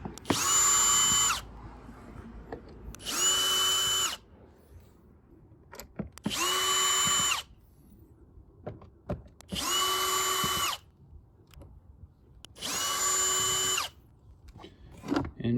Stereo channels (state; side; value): identical; both; correlation 1.00